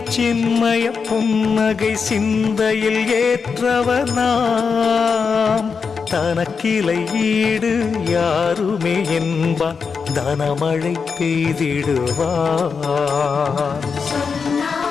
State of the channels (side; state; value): right; quieter; 5.5 dB